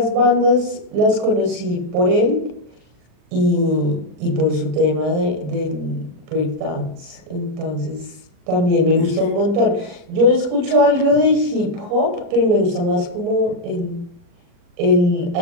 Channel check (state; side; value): late; left; 40 ms